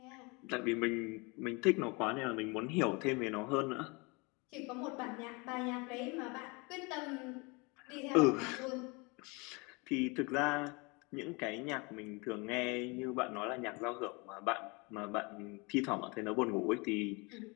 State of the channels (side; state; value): right; quieter; 28.3 dB